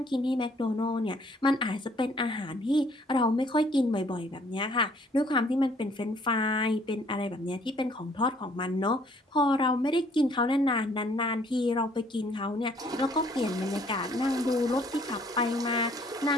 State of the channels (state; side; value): normal; both; correlation 0.61